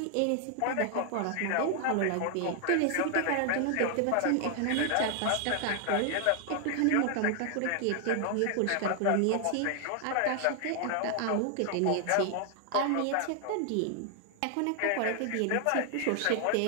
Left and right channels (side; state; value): both; different; correlation 0.00